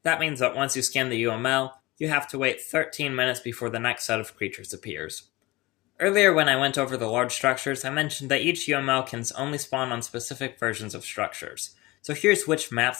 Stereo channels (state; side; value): quieter; right; 21.3 dB